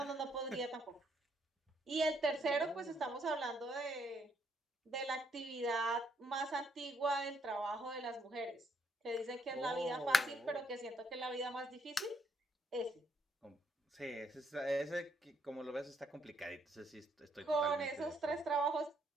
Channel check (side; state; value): both; normal; correlation 0.72